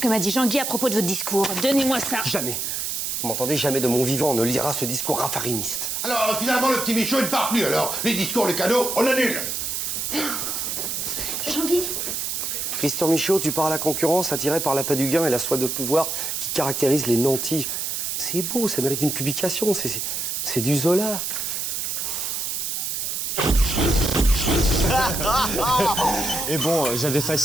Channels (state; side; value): noise; right; hiss, 2 dB below the sound